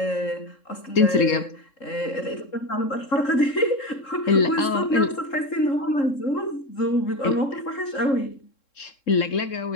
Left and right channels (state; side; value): late; right; 3.7 ms